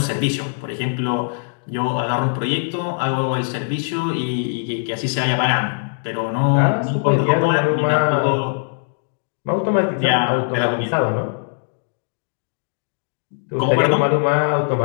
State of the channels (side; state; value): right; silent; digital silence